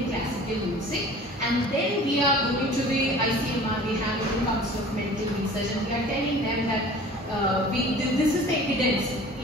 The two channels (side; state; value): both; normal; correlation 0.44